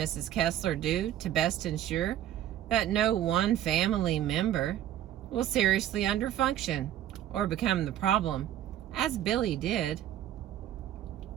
Kessler do to best ensure that no one family member will seriously underfunction or become the problem, as Billy did?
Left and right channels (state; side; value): quieter; left; 11.9 dB